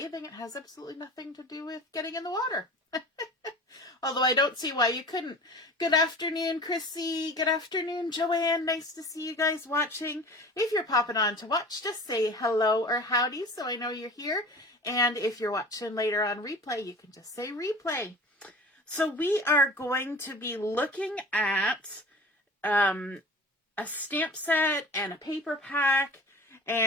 it has absolutely nothing to do with getting in the water. Although I don't see why you couldn't. Good afternoon, Chrissy. Good afternoon, Joanne. Nice to see you guys watching. If you're popping on to watch, just say hello or howdy so I know you're here. And if you're watching later on replay, you can just say replay. So we are going to be looking at a stamp set and a paper pack.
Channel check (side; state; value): both; normal; correlation 0.39